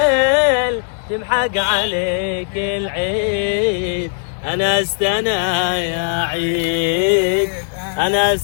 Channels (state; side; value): silent; right; digital silence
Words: تمحق عليك العيد. انا استنى يا عيد، انا